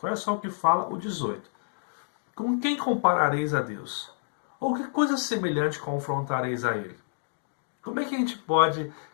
Olha só o que fala o 18. Com quem comparareis a Deus? Ou que coisa semelhante confrontareis a Ele? Como é que a gente pode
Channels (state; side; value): silent; right; digital silence